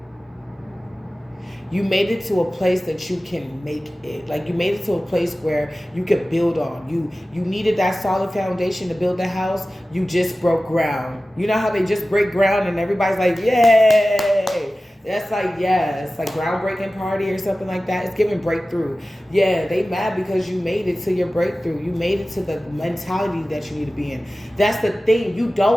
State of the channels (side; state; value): both; normal; correlation 0.96